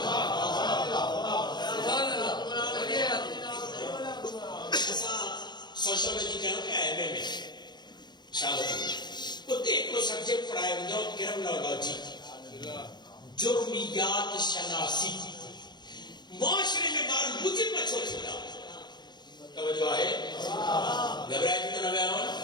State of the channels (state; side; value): late; right; 0.21 ms